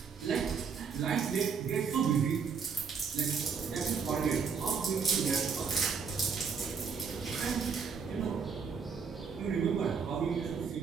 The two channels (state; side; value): quieter; left; 5.9 dB